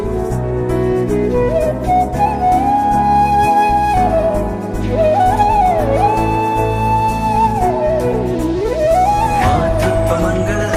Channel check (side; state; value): both; identical; correlation 1.00